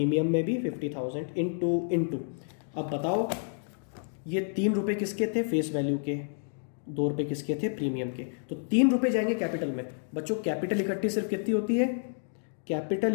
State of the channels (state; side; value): silent; right; digital silence